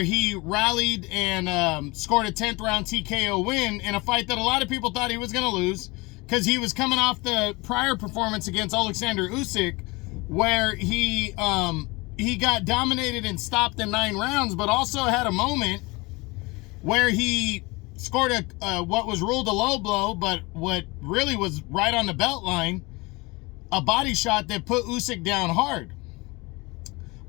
he rallied and scored a 10th round TKO win in a fight that a lot of people thought he was going to lose because he was coming off the prior performance against Alexander Usyk, where he got dominated and stopped in 9 rounds, but also had a moment where he scored a what was ruled a low blow, but what really was right on the belt line, a body shot that put Usyk down hard.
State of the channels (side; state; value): right; quieter; 24.7 dB